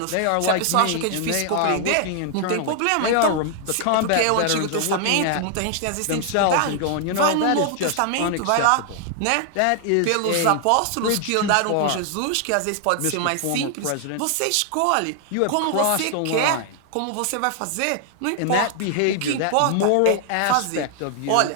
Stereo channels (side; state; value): both; different; correlation 0.00